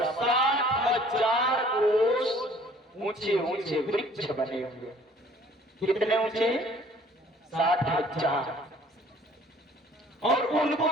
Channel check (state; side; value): normal; both; correlation 0.55